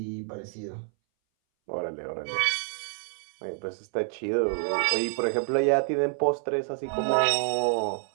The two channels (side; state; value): left; silent; 59 dB below the other